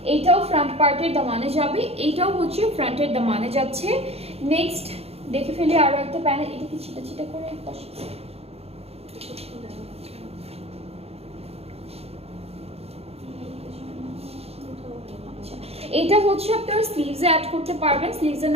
এইটাও ফ্রন্ট পার্টের দামানে যাবে, এইটাও হচ্ছে ফ্রন্টের দামানে যাচ্ছে। নেক্সট দেখে ফেলি আরো একটা প্যানেল, এটা কি ছিটা ছিটা করে বসেছে। এটা হচ্ছে আপনারা স্লিভসে অ্যাড করতে পারবেন, স্লিভসে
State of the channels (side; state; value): left; late; 0.29 ms